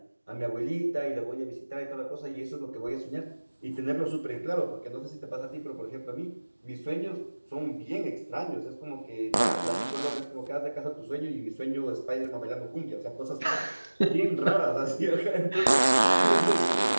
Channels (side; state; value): both; inverted; correlation -1.00